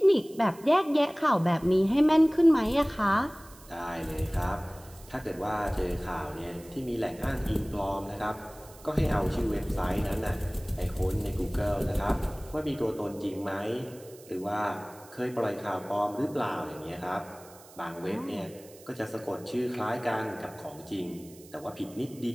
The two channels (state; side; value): noise; right; hiss, 22 dB below the sound